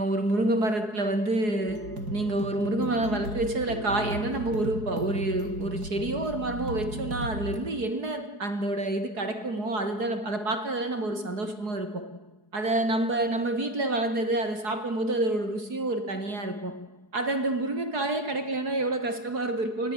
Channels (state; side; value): late; left; 4.7 ms